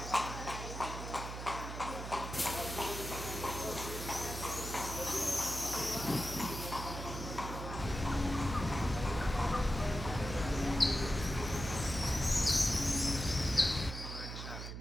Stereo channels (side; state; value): right; noise; hum, 7 dB below the sound